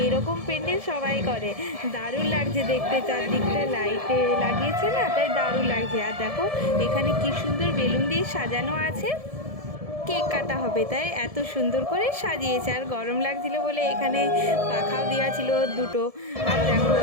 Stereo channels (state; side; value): late; left; 1.7 ms